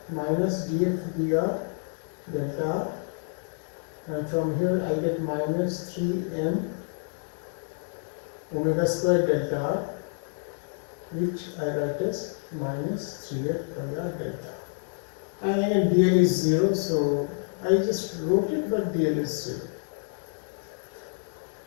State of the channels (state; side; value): silent; right; 59 dB below the other